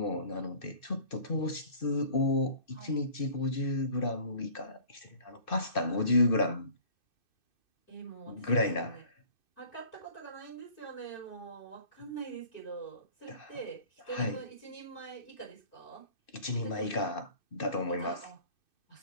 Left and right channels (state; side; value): late; right; 2.6 ms